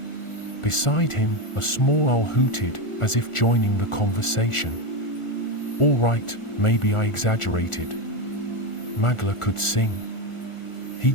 Beside him, a small owl hooted, as if joining the conversation. "All right, maybe I exaggerated. Magla could sing. He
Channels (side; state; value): right; late; 1.4 ms